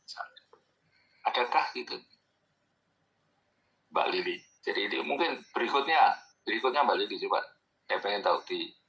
misalnya. Adakah gitu, Mbak Lili? Jadi ini mungkin berikutnya Mbak Lili coba, saya pengen tahu di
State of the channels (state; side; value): identical; both; correlation 1.00